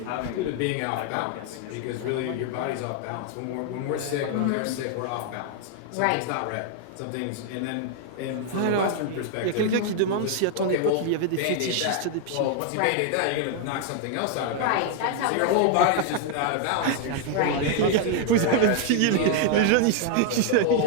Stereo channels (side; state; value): both; different; correlation 0.00